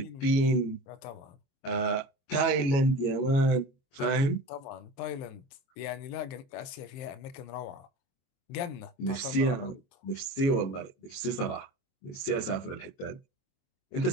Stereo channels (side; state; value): right; late; 22 ms